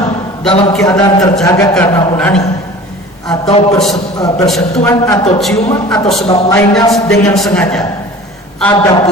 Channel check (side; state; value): both; normal; correlation 0.42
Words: dalam keadaan terjaga karena onani atau bersentuhan atau ciuman atau sebab lainnya dengan sengaja.